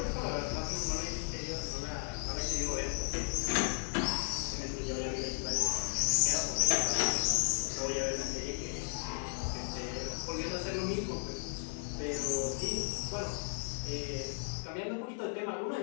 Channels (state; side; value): silent; right; 54 dB below the other